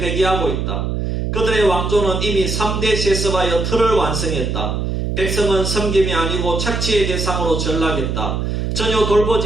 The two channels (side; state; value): right; noise; hum, 1 dB below the sound